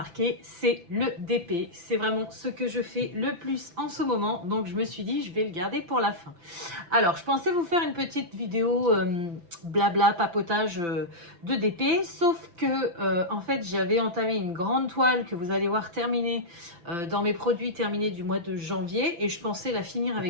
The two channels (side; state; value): left; late; 5.9 ms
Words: c'est le DP. C'est vraiment ce que je fais le plus en ce moment. Donc je me suis dit, je vais le garder pour la fin. Alors je pensais vous faire une petite vidéo blabla, papotage de DP. Sauf que en fait j'avais entamé une grande toile que vous allez voir terminée dans mes produits terminés du mois de janvier. Et je pensais la finir